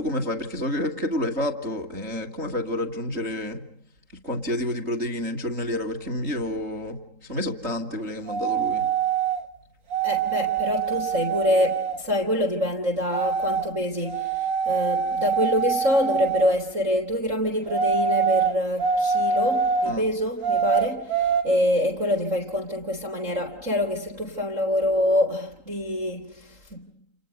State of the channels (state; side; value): late; left; 3.8 ms